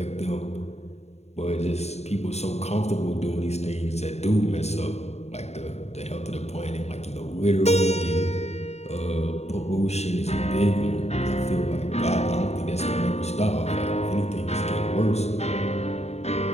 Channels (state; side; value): late; right; 0.31 ms